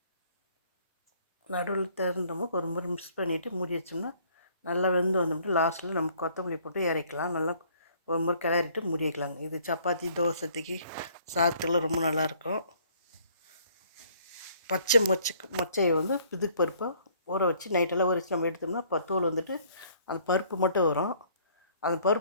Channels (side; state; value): both; inverted; correlation -0.60